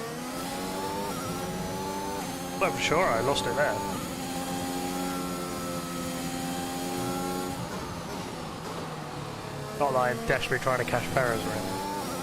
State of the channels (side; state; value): both; identical; correlation 1.00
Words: I'm sure I lost it there. Not that I'm desperately trying to catch Perez or anything.